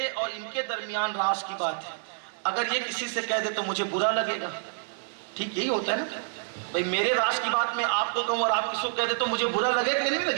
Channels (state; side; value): silent; left; 59 dB below the other